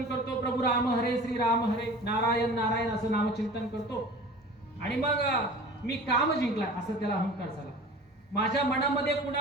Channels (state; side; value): normal; both; correlation 0.41